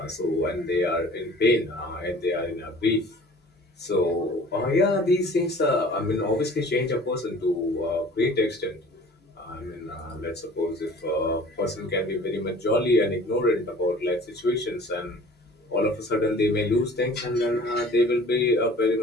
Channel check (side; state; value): both; normal; correlation 0.47